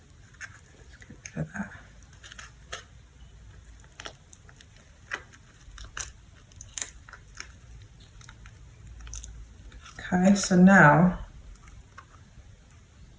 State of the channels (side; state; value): both; identical; correlation 1.00